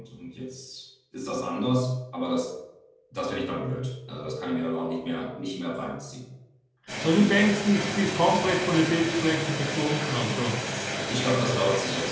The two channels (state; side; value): identical; both; correlation 1.00